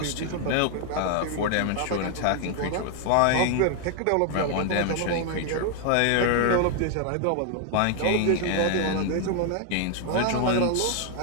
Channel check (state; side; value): different; both; correlation 0.00